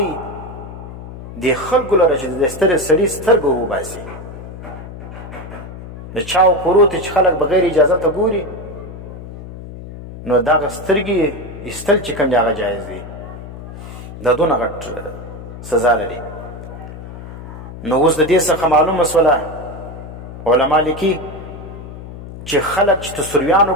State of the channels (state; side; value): noise; left; hum, 12 dB below the sound